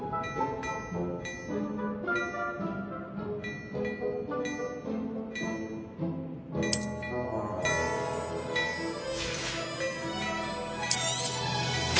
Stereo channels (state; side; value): identical; both; correlation 1.00